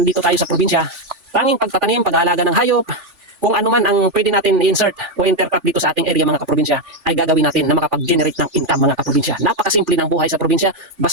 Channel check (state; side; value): late; left; 3.4 ms